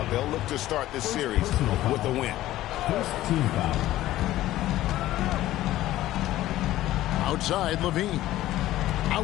They'll look to start this series with a win. Outside, Levine.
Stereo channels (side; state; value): right; quieter; 14.9 dB